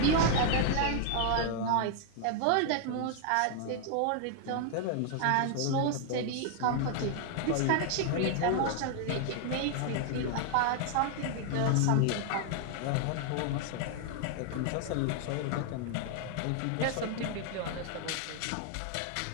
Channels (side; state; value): both; different; correlation 0.00